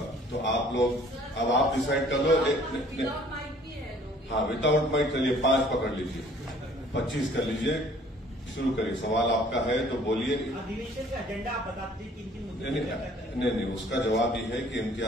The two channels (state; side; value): normal; both; correlation 0.55